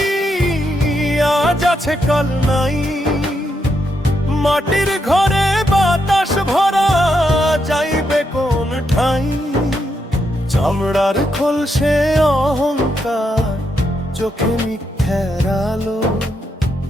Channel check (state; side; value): normal; both; correlation 0.81